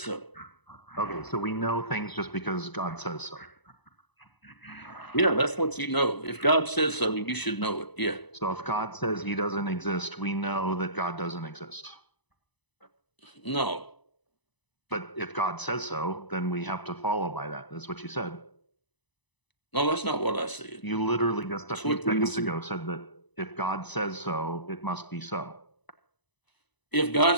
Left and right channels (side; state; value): right; late; 1.0 ms